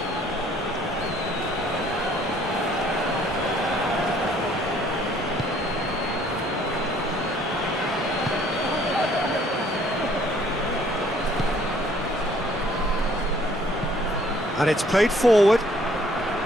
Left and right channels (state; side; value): normal; both; correlation 0.60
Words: And it's played forward.